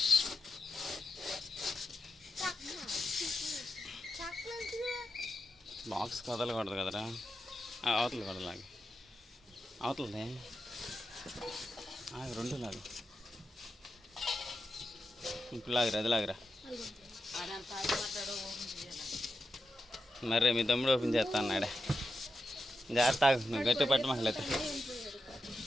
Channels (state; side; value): normal; both; correlation 0.88